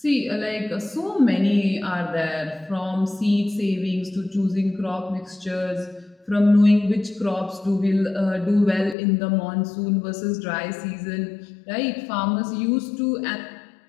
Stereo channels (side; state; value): right; drops out; at 9.0 s